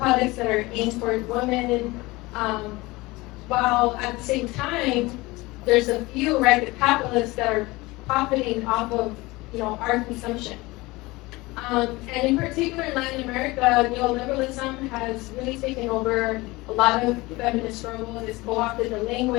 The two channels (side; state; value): right; quieter; 21.6 dB